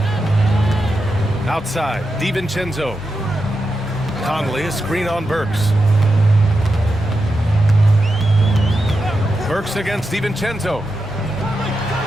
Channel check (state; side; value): normal; both; correlation 0.88